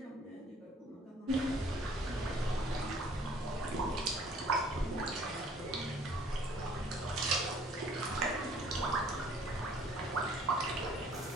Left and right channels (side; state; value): both; normal; correlation 0.56